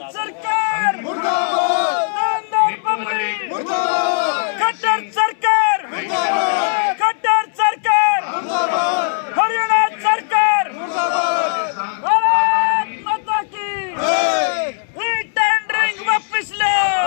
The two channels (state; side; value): silent; right; 67 dB below the other